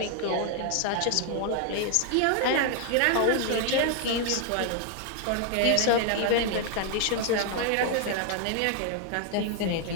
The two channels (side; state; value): both; different; correlation 0.00